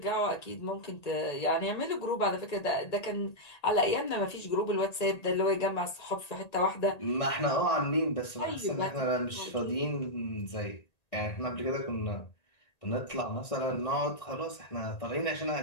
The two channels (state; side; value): late; right; 1.9 ms